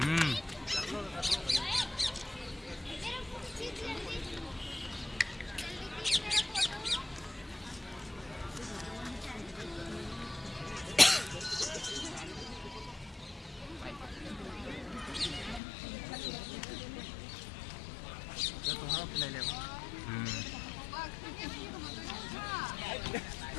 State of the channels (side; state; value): right; drops out; at 15.6 s